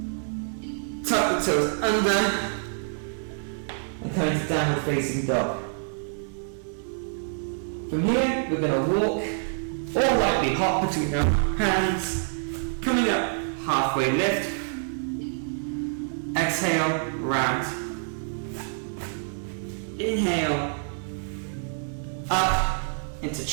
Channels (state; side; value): silent; left; digital silence